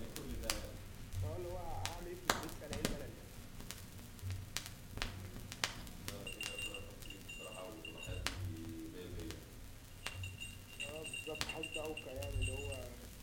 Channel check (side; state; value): both; identical; correlation 1.00